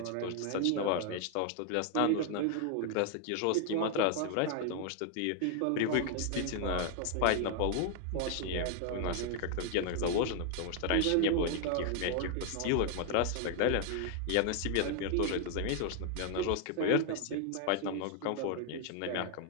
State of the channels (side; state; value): both; different; correlation 0.00